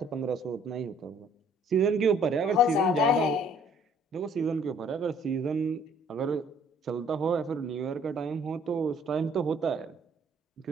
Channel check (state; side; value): normal; both; correlation 0.59